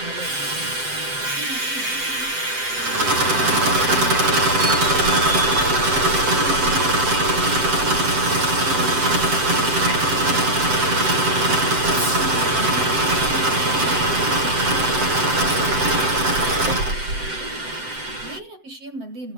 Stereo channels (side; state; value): left; late; 7.7 ms